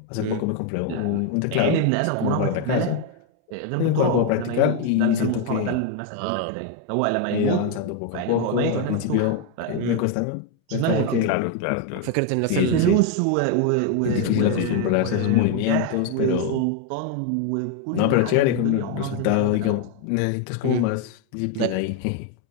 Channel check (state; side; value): different; both; correlation 0.01